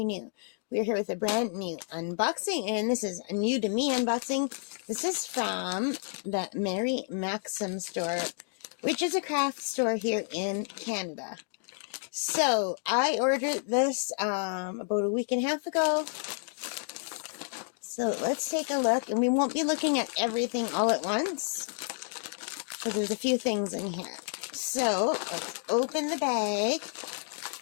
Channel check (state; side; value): silent; right; digital silence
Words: new. We're here with a brand new unboxing, and this is a new to me unboxing. This is from the Mary Maxim store, which is a craft store here in Canada. So I ordered this about a week and a half ago. So let's take a look, and we won't be looking at everything all at once because there's a few things in here. So, let's open the bag,